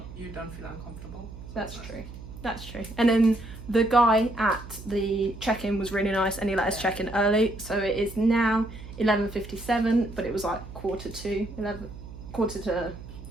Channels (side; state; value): right; noise; hum, 14 dB below the sound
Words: You don't feel uncomfortable. That's true. That's true. And then the guy at the check-in was really nice, and he let us check in early. So it is now 11:57, but it was like quarter to